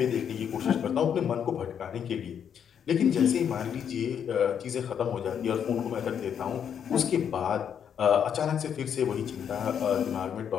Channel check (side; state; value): right; quieter; 8.2 dB